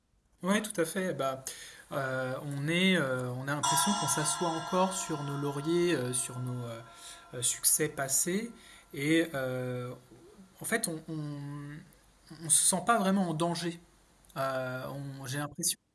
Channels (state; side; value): identical; both; correlation 1.00